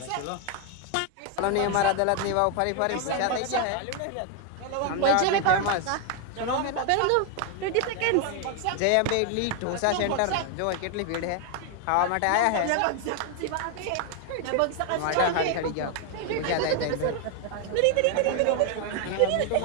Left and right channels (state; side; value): different; both; correlation 0.01